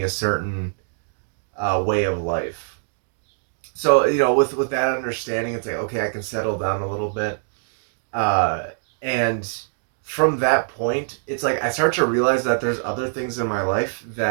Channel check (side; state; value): left; silent; digital silence